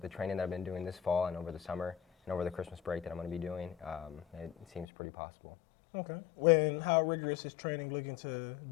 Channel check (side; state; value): right; drops out; at 4.9 s